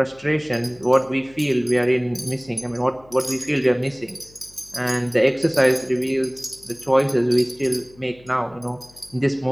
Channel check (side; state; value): left; noise; hum, 26 dB below the sound